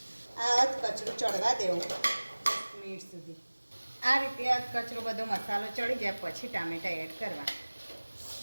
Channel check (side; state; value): both; inverted; correlation -1.00